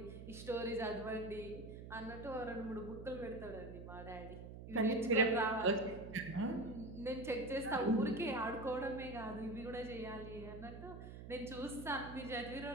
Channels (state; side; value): noise; right; hum, 11 dB below the sound